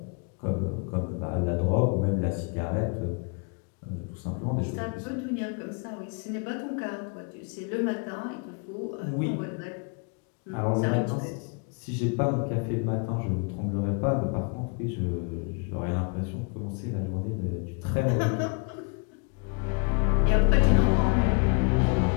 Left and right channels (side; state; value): right; quieter; 36.5 dB